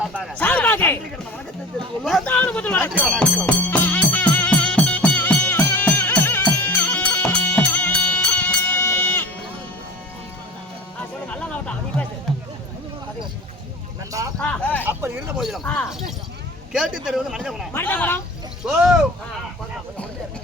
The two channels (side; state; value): both; normal; correlation 0.37